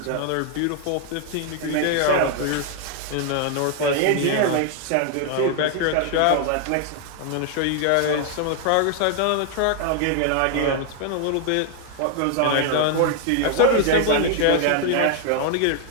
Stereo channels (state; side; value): different; both; correlation 0.00